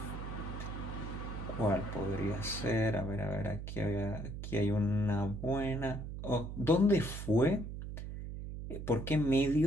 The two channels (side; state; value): right; noise; hum, 7 dB below the sound